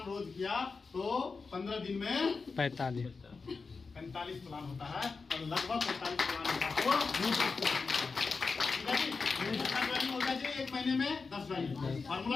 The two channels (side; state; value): right; quieter; 4.6 dB